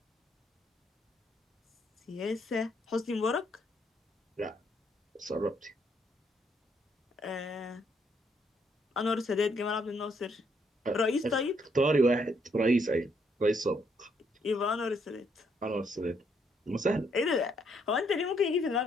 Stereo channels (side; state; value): both; normal; correlation 0.72